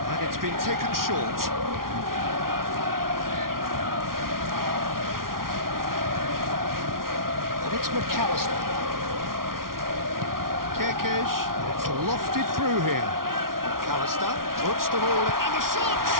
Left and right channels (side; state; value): left; late; 0.92 ms